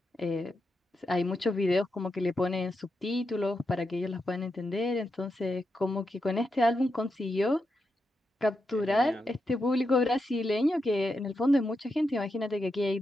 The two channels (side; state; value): both; normal; correlation 0.86